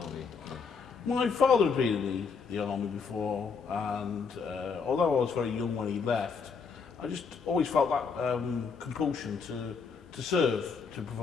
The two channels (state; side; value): quieter; right; 5.4 dB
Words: My father had been in the army before, and although I was very young when he left, I just always felt that compulsion to serve, to